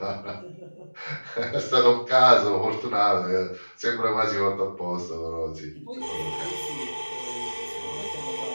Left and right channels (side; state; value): both; inverted; correlation -1.00